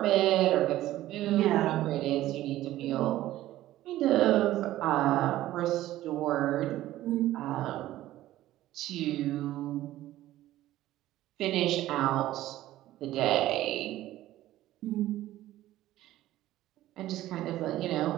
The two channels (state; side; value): quieter; left; 14.8 dB